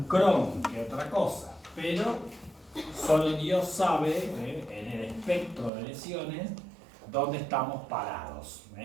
Crohn que otra cosa, pero solo Dios sabe en el espectro de lesiones dónde estamos parados.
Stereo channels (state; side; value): drops out; left; at 5.7 s